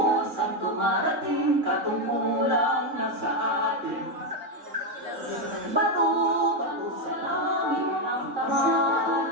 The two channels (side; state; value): left; late; 3.6 ms